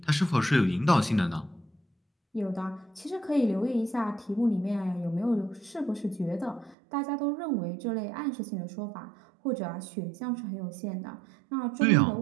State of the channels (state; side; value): drops out; left; at 6.8 s